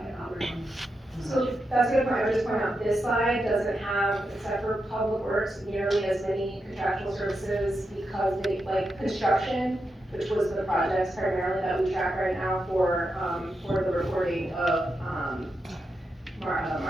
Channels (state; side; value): normal; both; correlation 0.87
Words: So that's a good point. I would just point out, this slide doesn't have, except for public works, nearly as many contractual services because they, like construction, which was the projects primarily that we track right now for the reporting of,